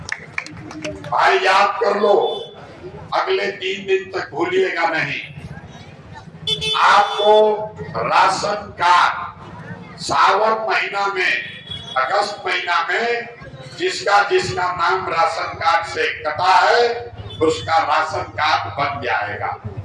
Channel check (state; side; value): identical; both; correlation 1.00